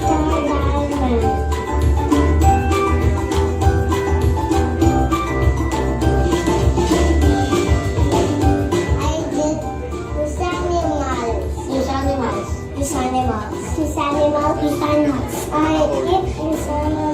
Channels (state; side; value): identical; both; correlation 1.00